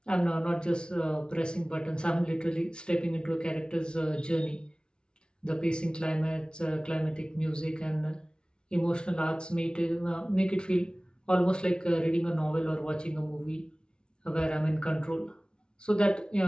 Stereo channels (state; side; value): late; right; 0.055 ms